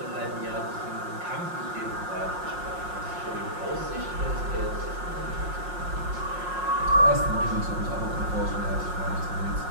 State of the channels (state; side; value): late; left; 5.6 ms